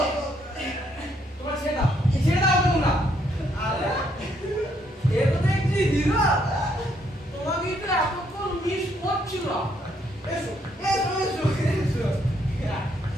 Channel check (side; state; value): both; normal; correlation 0.71